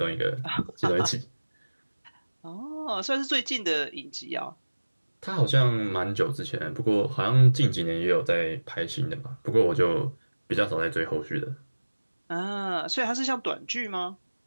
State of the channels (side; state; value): both; inverted; correlation -1.00